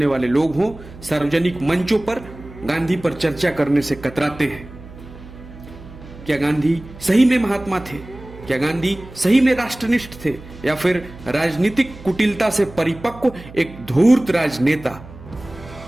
वाले लोग हों, सार्वजनिक मंचों पर गांधी पर चर्चा करने से कतराते हैं। क्या गांधी सही में महात्मा थे? क्या गांधी सही में राष्ट्रनिष्ठ थे, या फिर राजनीतिक कुटिलता से परिपक्व एक धूर्त राजनेता?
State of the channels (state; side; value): noise; right; hum, 17 dB below the sound